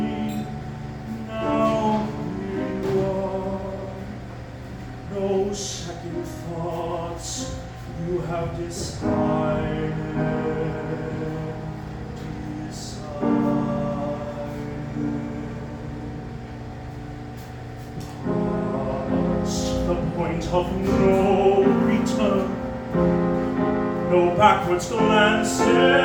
Now here you are. No second thoughts, you have decided. Past the point of no return, no backwards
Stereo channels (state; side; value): identical; both; correlation 1.00